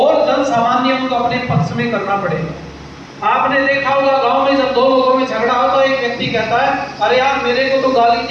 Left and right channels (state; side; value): identical; both; correlation 1.00